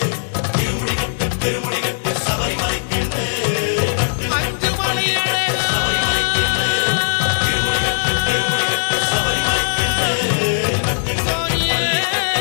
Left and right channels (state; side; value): silent; right; digital silence